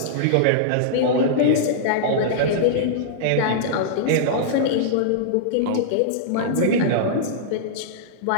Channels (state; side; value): different; both; correlation -0.02